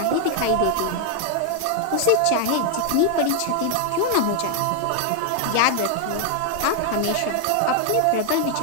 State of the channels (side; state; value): both; different; correlation 0.00